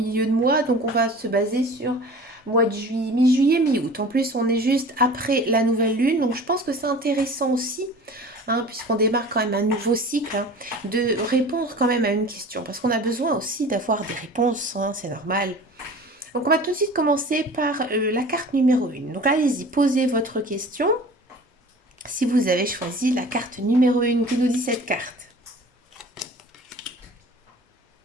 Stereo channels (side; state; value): both; normal; correlation 0.41